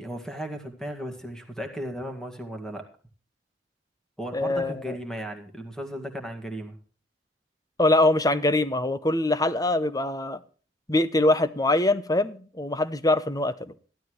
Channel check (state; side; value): normal; both; correlation 0.58